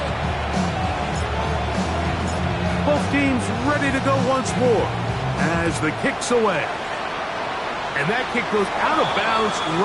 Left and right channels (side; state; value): both; identical; correlation 1.00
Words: Both teams ready to go once more as the kick's away. And that kick goes out of bounds